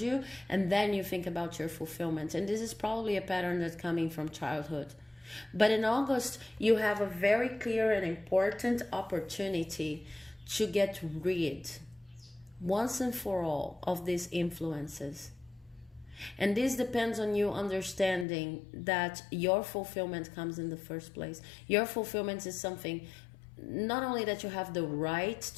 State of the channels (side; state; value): right; drops out; at 18.2 s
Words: and then you think about your fulfillment. And this is probably a pattern that's coming from childhood. But in August, you have a very clear and important opportunity to get rid, once and for all, of these influences. And this depends on you understanding that your fulfillment comes in the first place. Your fulfillment is something not only that you have the right